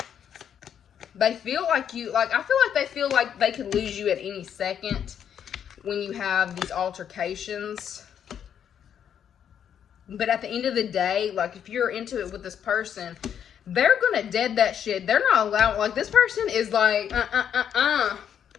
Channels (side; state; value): right; quieter; 8.8 dB